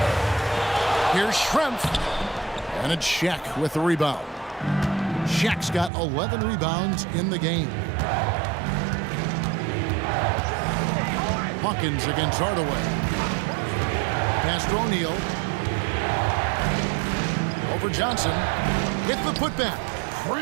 Here's Schrempf. And it's Shaq with the rebound. Shaq's got 11 rebounds in the game. Hawkins against Hardaway. Pass to O'Neal. Over Johnson. Hit the putback.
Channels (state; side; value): drops out; left; at 5.9 s